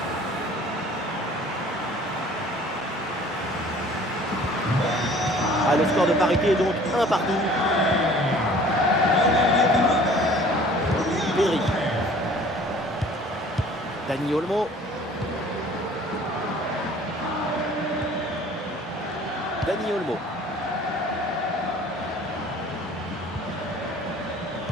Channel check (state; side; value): normal; both; correlation 0.50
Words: Ah, le score de parité est donc 1 partout. Pedri. Dani Olmo. Dani Olmo.